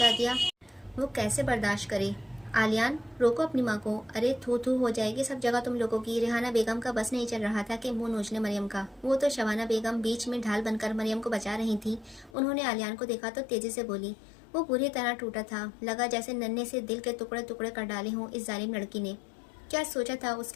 दिया? वो कैसे बर्दाश्त करे? आलियान, रोको अपनी माँ को। अरे थू थू हो जाएगी सब जगह तुम लोगों की। रेहाना बेगम का बस नहीं चल रहा था कि मुंह नोचने मरियम का। वो तो शबाना बेगम बीच में ढाल बनकर मरियम को बचा रही थी। उन्होंने आलियान को देखा तो तेजी से बोली। वो बुरी तरह टूटा था। लगा जैसे नन्हे से दिल के टुकड़े टुकड़े कर डाले हों इस जालिम लड़की ने। क्या सोचा था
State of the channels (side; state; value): right; drops out; at 12.4 s